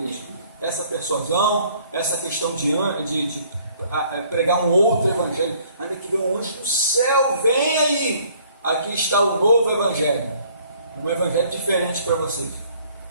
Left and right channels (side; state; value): both; inverted; correlation -0.59